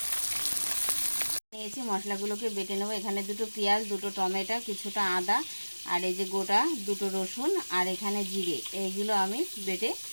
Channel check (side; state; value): both; inverted; correlation -1.00